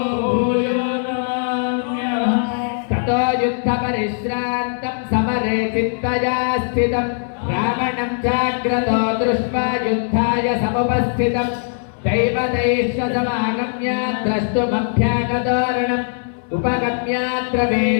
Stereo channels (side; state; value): right; silent; digital silence